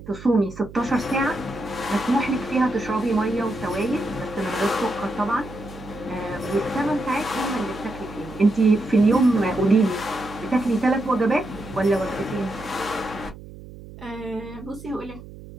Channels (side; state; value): right; noise; hum, 16 dB below the sound